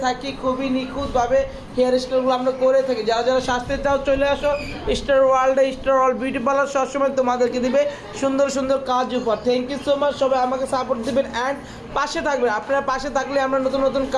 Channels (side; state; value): both; identical; correlation 1.00